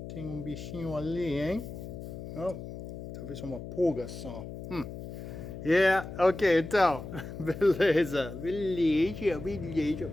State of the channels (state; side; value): noise; left; hum, 10 dB below the sound